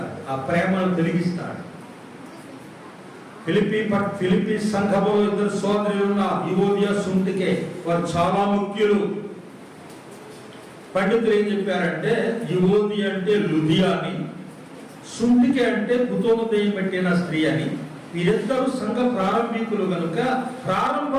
ఆ ప్రేమను తొలగిస్తాడు. ఫిలిప్పీ సంఘంలో ఇద్దరు సోదరులు ఉన్న యువోదియా, సుంటికే, వారు చాలా ముఖ్యులు. పండితులు ఏం చెప్పారంటే యువోది అంటే లుదియా అని, సుంటికే అంటే కుతోమదయం పెట్టిన స్త్రీ అని. వీరిద్దరూ సంఘ ప్రారంభికులు కనుక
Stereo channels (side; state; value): both; identical; correlation 1.00